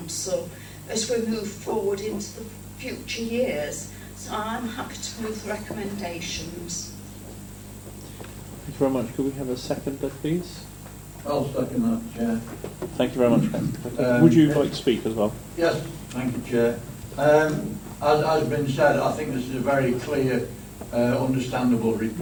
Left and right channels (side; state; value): both; identical; correlation 1.00